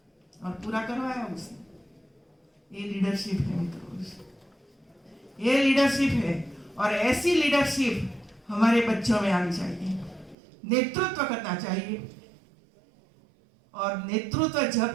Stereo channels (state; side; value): drops out; left; at 10.4 s